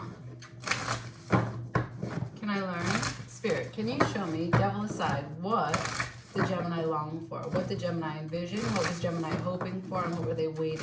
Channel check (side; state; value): both; identical; correlation 1.00